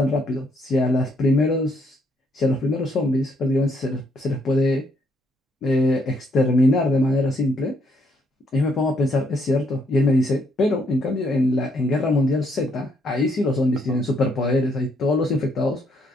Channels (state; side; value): normal; both; correlation 0.71